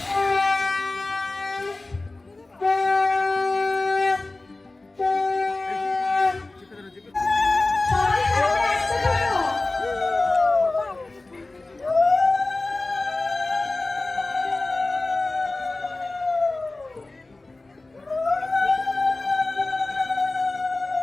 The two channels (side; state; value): right; quieter; 3.1 dB